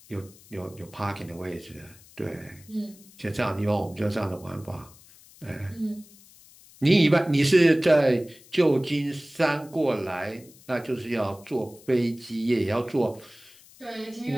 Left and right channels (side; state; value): left; noise; hiss, 24 dB below the sound